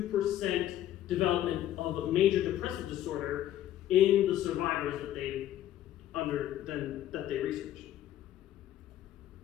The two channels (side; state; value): right; quieter; 12.4 dB